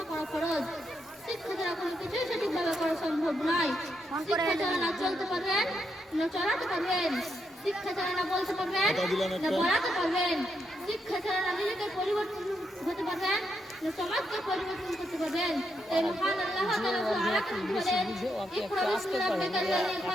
করা ফরজ। শিক্ষা ছাড়া কোনো কিছুই সঠিকভাবে করা সম্ভব নয়। শিক্ষা ছাড়া না চলতে পারবেন না চলাতে পারবেন, শিক্ষা ছাড়া না বলতে পারবেন না পড়াতে পারবেন, শিক্ষা ছাড়া না নিজেকে পরিবর্তন হতে পারবেন না সমাজকে পরিবর্তন করতে পারবেন। তাই মহান আল্লাহ তাআলা আয়াতে বলেন ইকরা বিসমি রাব্বিকাল্লাযী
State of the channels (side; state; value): both; normal; correlation 0.80